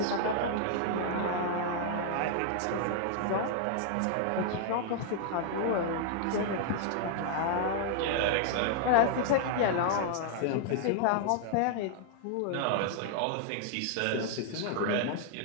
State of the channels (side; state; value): both; different; correlation -0.01